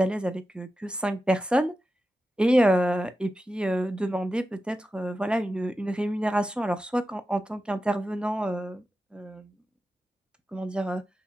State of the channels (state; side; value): normal; both; correlation 0.91